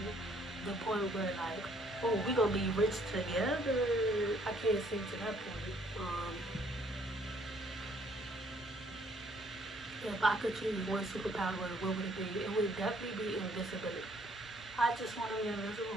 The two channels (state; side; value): normal; both; correlation 0.64